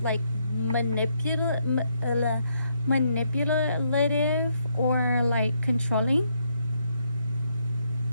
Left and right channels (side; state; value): both; inverted; correlation -0.75